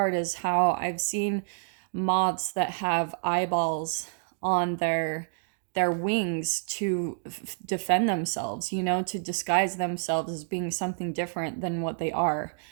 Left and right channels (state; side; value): silent; left; digital silence